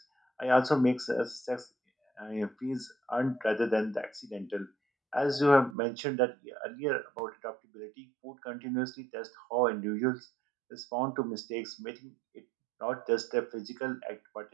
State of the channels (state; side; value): drops out; left; at 5.8 s